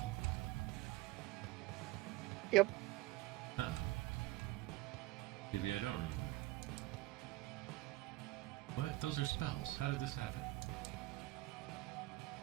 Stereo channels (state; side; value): quieter; left; 19.0 dB